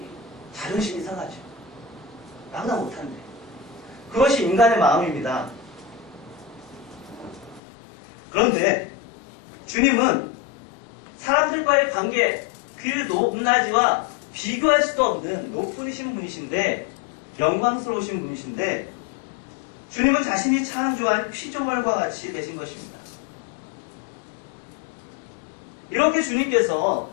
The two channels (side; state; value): right; drops out; at 7.6 s